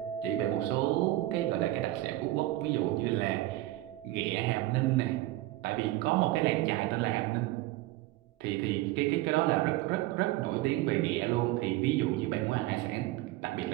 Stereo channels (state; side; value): quieter; left; 16.9 dB